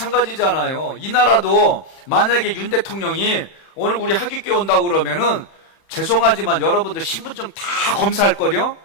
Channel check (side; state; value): right; late; 31 ms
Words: 이 나라도 만약에 윤 대통령이 오늘 우리 하객교회 온다고 그러면은 죄송하지만 여러분들 신분증 다 검사할 거요?